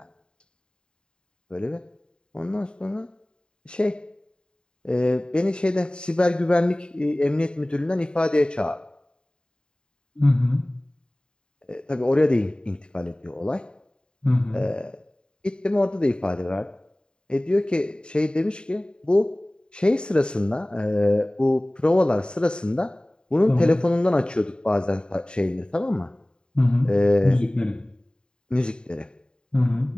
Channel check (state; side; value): late; right; 0.049 ms